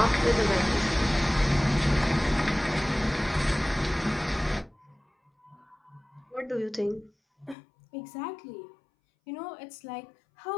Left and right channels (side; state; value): right; drops out; at 7.6 s